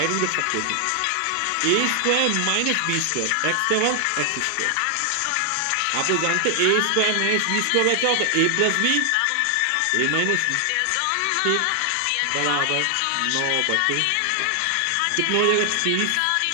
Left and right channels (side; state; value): both; different; correlation 0.00